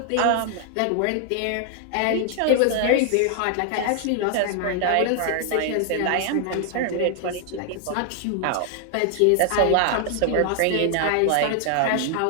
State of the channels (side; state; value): both; different; correlation 0.00